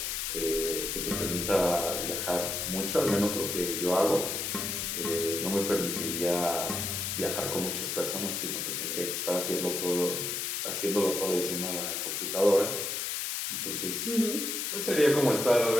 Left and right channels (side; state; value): left; noise; hiss, 2 dB below the sound